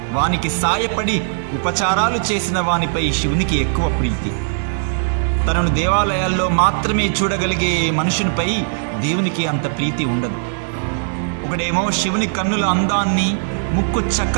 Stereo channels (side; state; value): left; silent; digital silence